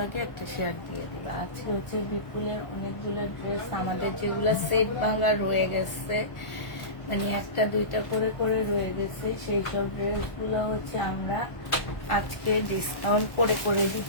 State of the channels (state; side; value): late; right; 1.1 ms